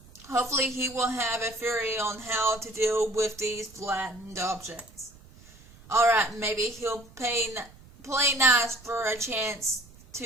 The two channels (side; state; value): right; noise; rumble, 23 dB below the sound